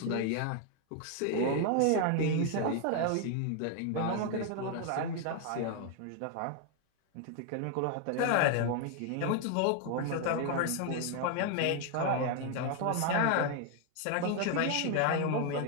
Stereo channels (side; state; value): both; different; correlation 0.01